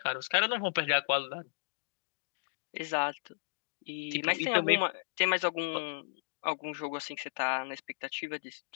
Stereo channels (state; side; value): silent; right; digital silence